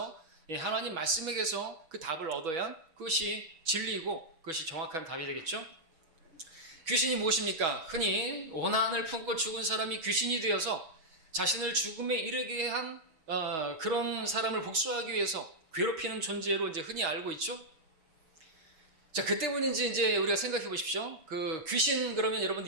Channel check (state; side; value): late; left; 6.2 ms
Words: 하나님 말씀에게서 그 답을 얻어야 그것이 진리이고 그것이 정확한 답이 되겠죠. 귀신이 무엇입니까? 흔히 원한을 품고 죽은 사람이 귀신이 되어서 자신을 죽음에 이르게 한 그런 사람을 복수하기 위해서 괴롭히는 존재로 이제 흔히 알고 있죠. 자, 그 때문인지 이제 우리가 생각해 보십시오. 그 귀신 그러면